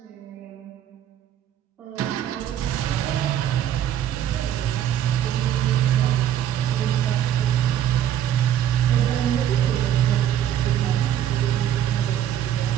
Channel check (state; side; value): quieter; left; 10.7 dB